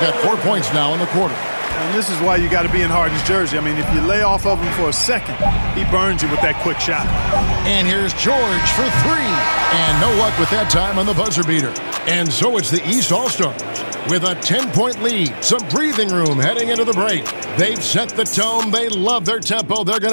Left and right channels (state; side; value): inverted; both; correlation -1.00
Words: 4 points now in the quarter. And this is why you got to be in Harden's jersey. I mean, if you lay off of him for a second, he burns you with that quick shot. And here's George for 3. And no luck with that time on the buzzer beater. And so it's the East All-Stars with a 10-point lead. Some breathing room heading into the break. They've set the tone. They love their tempo. They're going